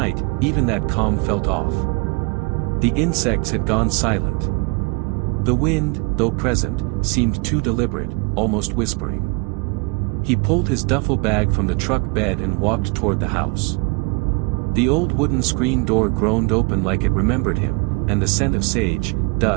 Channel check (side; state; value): left; quieter; 30.4 dB